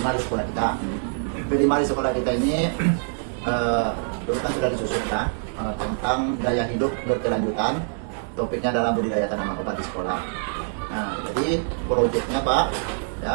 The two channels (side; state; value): left; silent; digital silence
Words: sekolah kita. P5 di sekolah kita ini dulu kan sudah disusun tentang gaya hidup berkelanjutan. Topiknya adalah budidaya tanaman obat di sekolah. Nah, jadi proyeknya Pak,